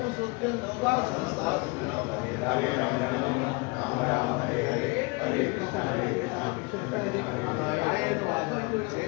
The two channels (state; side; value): quieter; right; 27.7 dB